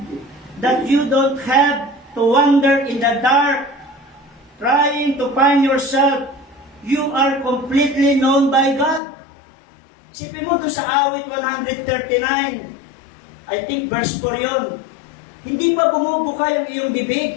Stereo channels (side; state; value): right; drops out; at 9.0 s